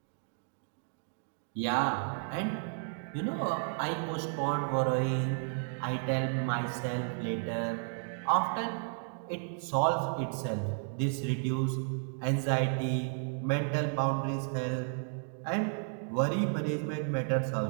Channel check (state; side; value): silent; left; 56 dB below the other